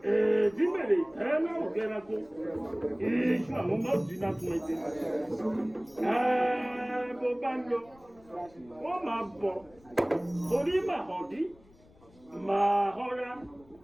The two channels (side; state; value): left; noise; rumble, 27 dB below the sound